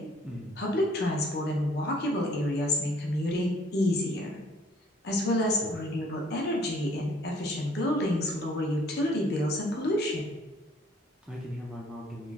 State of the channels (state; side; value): normal; both; correlation 0.59